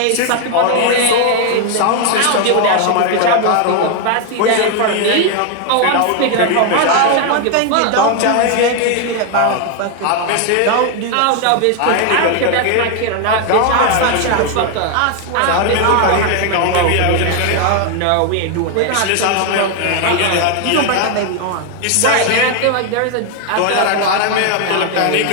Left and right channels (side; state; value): both; different; correlation 0.00